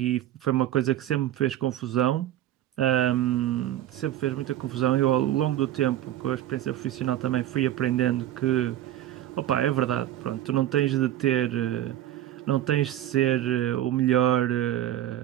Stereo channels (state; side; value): quieter; left; 12.8 dB